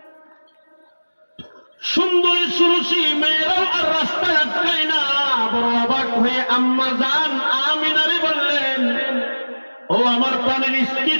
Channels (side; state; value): both; inverted; correlation -1.00